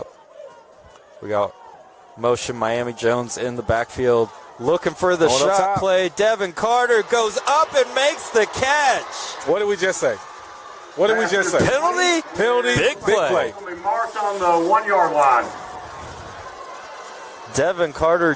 We got motion Miami Jones in the backfield. Looking for the shot play. Devin Carter goes up and makes the catch. What did we just say? What did we just say? Penalty, big play. Will be marked on the 1-yard line. Devin Carter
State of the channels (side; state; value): both; identical; correlation 1.00